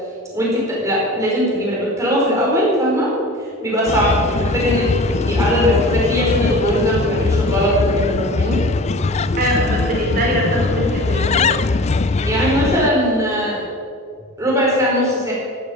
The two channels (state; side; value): normal; both; correlation 0.38